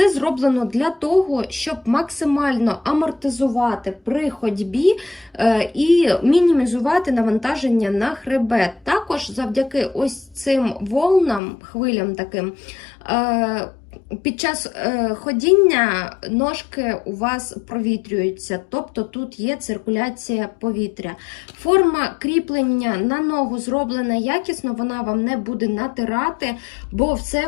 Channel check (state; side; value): drops out; right; at 11.4 s